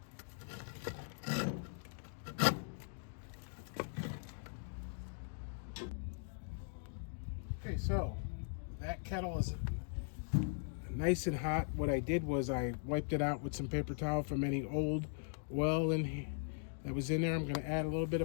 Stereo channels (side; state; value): right; silent; digital silence